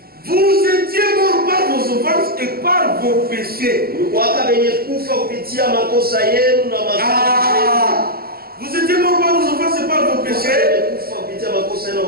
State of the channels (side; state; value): left; late; 0.44 ms